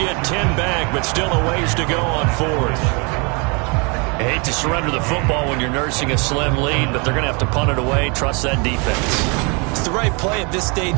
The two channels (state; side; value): quieter; left; 31.9 dB